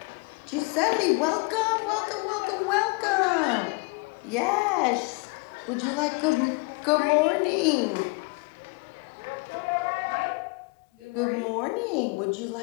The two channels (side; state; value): right; quieter; 28.9 dB